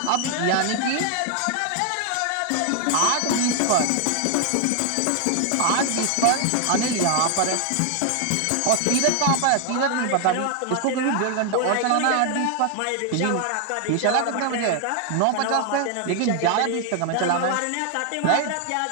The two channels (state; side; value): different; both; correlation 0.00